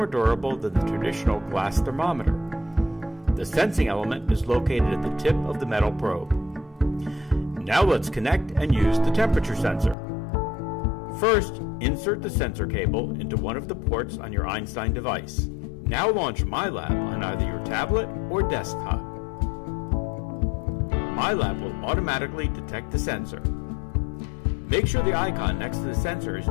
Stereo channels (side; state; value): right; drops out; at 10.0 s